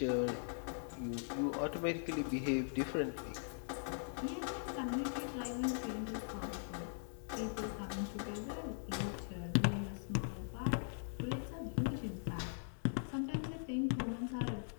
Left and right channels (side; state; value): right; silent; digital silence